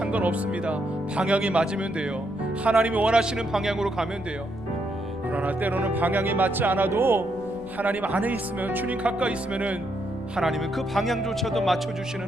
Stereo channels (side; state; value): left; noise; rumble, 19 dB below the sound